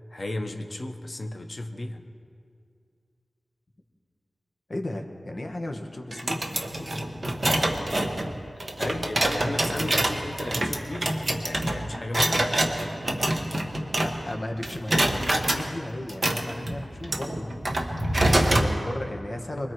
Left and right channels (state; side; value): normal; both; correlation 0.96